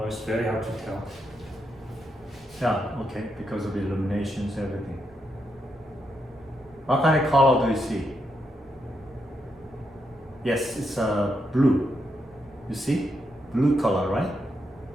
it's very hard to tell. Yeah, okay, because of the illuminations, everything. What kind of color do you see? Yes, it's blue. You see? Blue color, right?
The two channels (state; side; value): normal; both; correlation 0.82